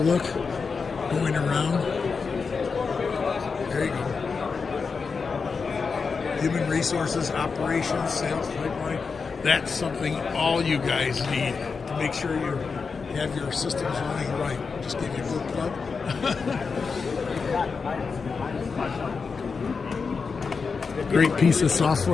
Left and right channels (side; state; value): right; quieter; 5.1 dB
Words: going around. There you go. Human resources, operations, sales pipeline. That's something all you guys need to make sure you have your systems running right. Just give you a good plug. Great piece of